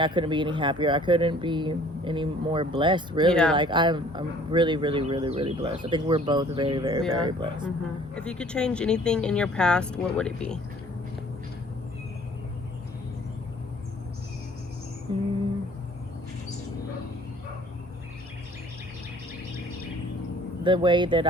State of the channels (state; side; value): normal; both; correlation 0.54